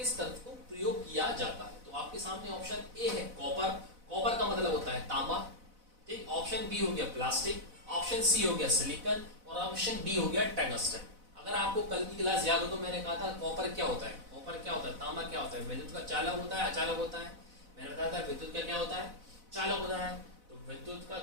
तत्व को प्रयोग किया जाता है। तो आपके सामने ऑप्शन ए है कॉपर, कॉपर का मतलब होता है तांबा। ठीक। ऑप्शन बी हो गया प्लास्टिक, ऑप्शन सी हो गया सिलिकॉन और ऑप्शन डी हो गया टंगस्टन। अगर आपको कल की क्लास याद हो तो मैंने कहा था कॉपर क्या होता है, कॉपर क्या होता है, तांबा क्या होता है, विद्युत का चालक होता है, अचालक होता है। मैंने बताया था विद्युत का क्या होता है, चालक होता है। तो विद्युत का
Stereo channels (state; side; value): late; left; 4.0 ms